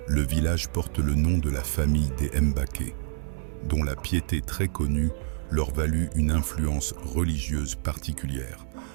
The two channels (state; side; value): silent; left; 60 dB below the other